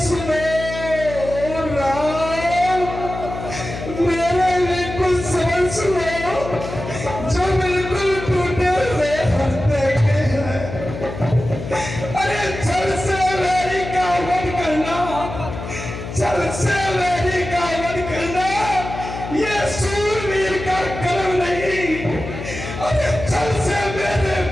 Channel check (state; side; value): noise; left; hum, 9 dB below the sound